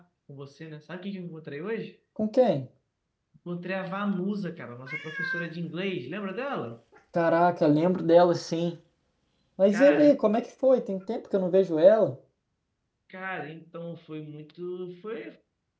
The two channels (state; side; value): identical; both; correlation 1.00